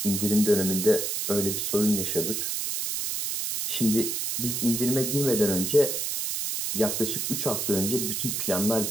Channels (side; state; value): right; noise; hiss, 1 dB below the sound